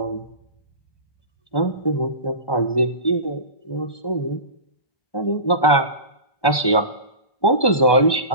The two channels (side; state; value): right; late; 1.2 ms